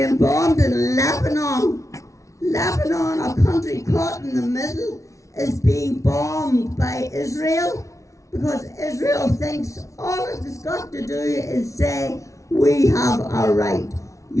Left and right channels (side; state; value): right; late; 0.15 ms